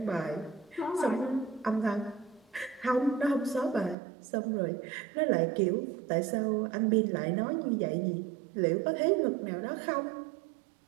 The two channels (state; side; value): drops out; left; at 4.0 s